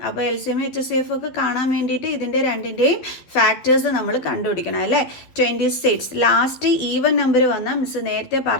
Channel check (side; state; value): right; late; 12 ms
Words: അപ്പോൾ LCM HCF ഒക്കെ കാണാൻ വേണ്ടിയിട്ട് ഇതിൻ്റെ രണ്ടിൻ്റെയും ഫാക്ടേഴ്സ് നമ്മൾ കണ്ടുപിടിക്കണം അല്ലേ. 26 ലാസ്റ്റ് ഈവൻ നമ്പർ വന്നാൽ മിസ് നേരത്തെ